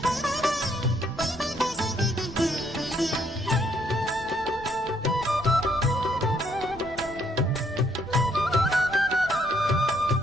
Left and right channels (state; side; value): noise; right; rumble, 17 dB below the sound